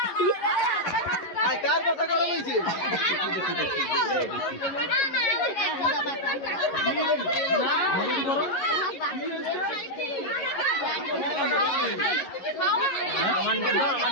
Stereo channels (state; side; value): late; right; 11 ms